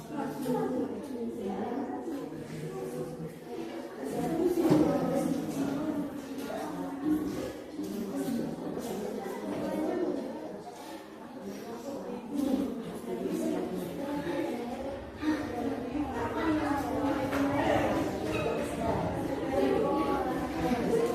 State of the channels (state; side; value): identical; both; correlation 1.00